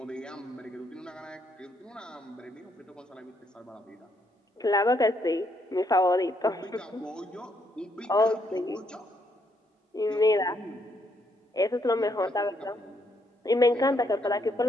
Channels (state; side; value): normal; both; correlation 0.74